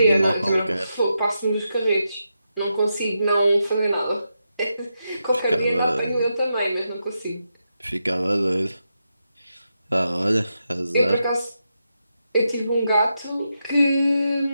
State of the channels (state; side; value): inverted; both; correlation -0.85